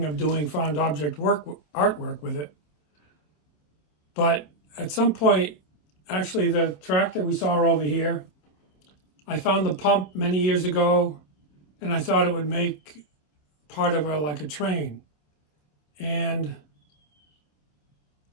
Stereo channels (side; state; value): right; late; 27 ms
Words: of doing found object artwork with it. But at some point, actually the tractor we saw over here, I found the pump many years ago, and I thought it would make part of like a train. And